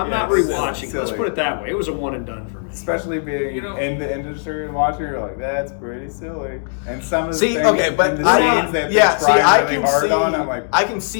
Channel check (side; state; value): right; silent; 67 dB below the other